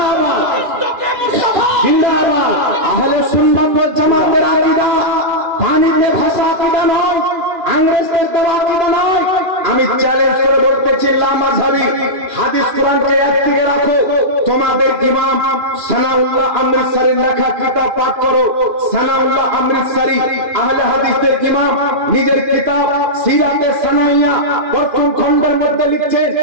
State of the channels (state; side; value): late; left; 2.4 ms